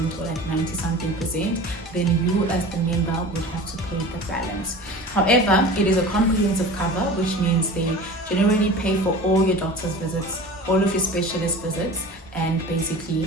or like 90-something%. Then you as the member would have to pay the balance. However, it is a comprehensive cover, which means they generally pay for all your doctor's visits, all of your specialist visits, and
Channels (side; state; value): both; normal; correlation 0.37